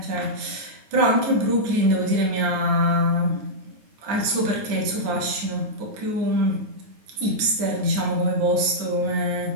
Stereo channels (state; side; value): late; left; 9.4 ms